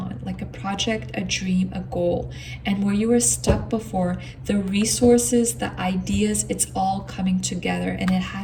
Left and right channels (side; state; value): both; identical; correlation 1.00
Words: like a project, a dream, a goal. And where you were stuck before, the resources, the ideas, it's all coming together, and it